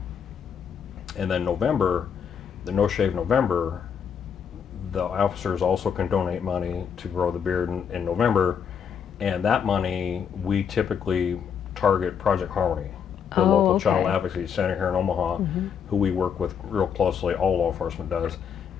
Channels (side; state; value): right; quieter; 7.4 dB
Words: then November, the No Shave November, the officers also can donate money to grow the beard in November, and that money we typically target Project Harmony, the local child advocacy center here in Omaha, who we work with real closely. All law enforcement does.